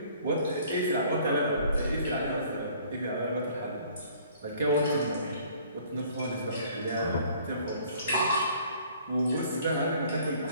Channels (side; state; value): both; inverted; correlation -0.56